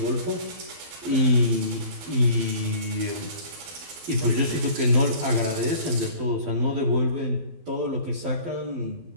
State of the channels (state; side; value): late; left; 12 ms